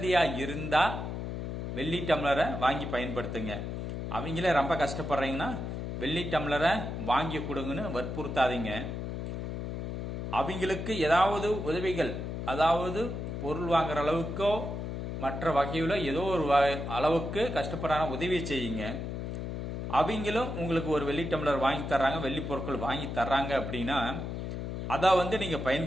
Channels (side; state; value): left; noise; hum, 4 dB below the sound